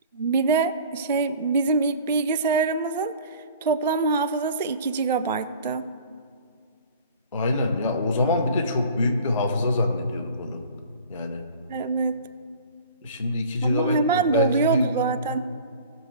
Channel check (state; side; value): inverted; both; correlation -0.45